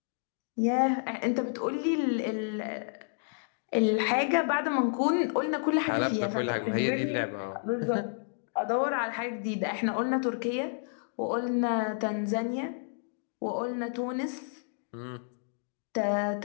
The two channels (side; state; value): right; silent; digital silence